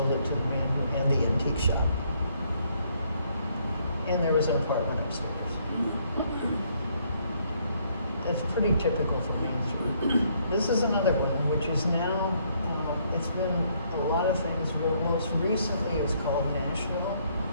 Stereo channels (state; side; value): inverted; both; correlation -0.69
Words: it to the man who ran the antique shop. And there was an apartment upstairs. It's pretty typical for Main Street. This is another one, which is now, it's been a lot of things, but most recently it was called Nashville.